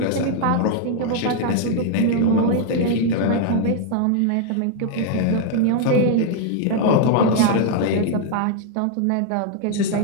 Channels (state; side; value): different; both; correlation 0.00